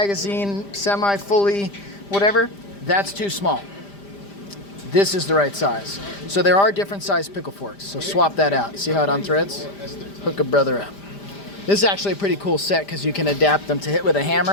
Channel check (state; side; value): late; right; 5.0 ms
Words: semi-fully, whatever. That's too small. This is the right size. So there are different size pickle forks. So swap that out. See how it unthreads? Hook a brother up. This is actually a pretty cool set because you can adapt them to hit with a